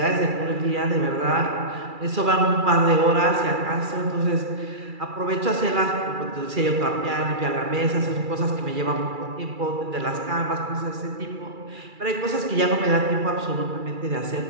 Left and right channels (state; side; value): late; left; 2.4 ms